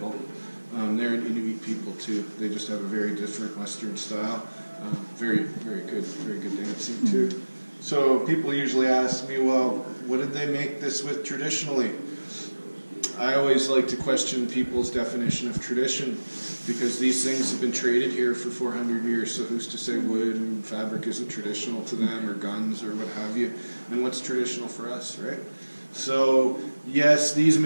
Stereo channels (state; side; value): inverted; both; correlation -1.00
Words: They're an Inuit people too. They just have a very different Western style. Very good dancing too. So people usually ask me, well, what did they make this with traditionally? I always like to question people's definition of tradition, because these things have been traded here for 400 years, so who's to say wood and fabric isn't traditional to them, or guns, or what have you, and what's traditional for us, right? So, yes, these